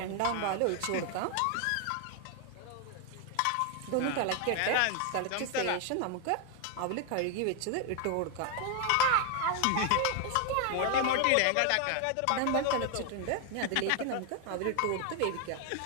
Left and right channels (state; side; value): different; both; correlation 0.01